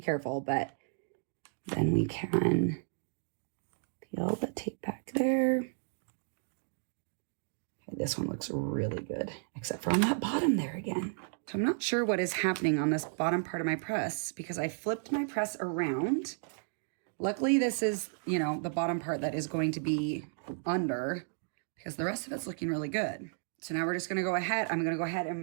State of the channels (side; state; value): left; silent; digital silence